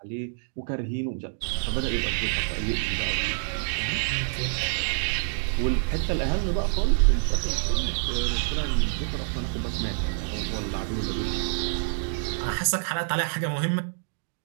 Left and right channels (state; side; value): silent; left; digital silence